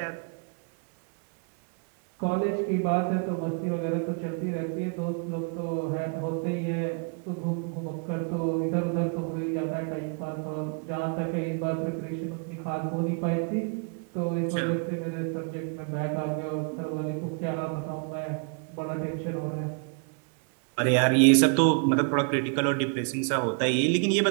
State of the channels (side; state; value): left; quieter; 39.3 dB